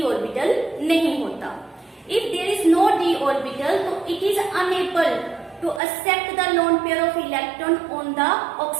ऑर्बिटल नहीं होता। If there is no d orbital तो it is unable to accept the lone pair of electron on the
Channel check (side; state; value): left; drops out; at 5.8 s